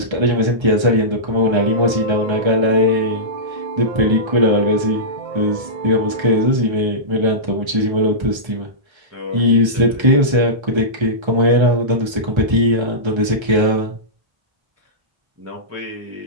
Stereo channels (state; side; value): late; left; 1.3 ms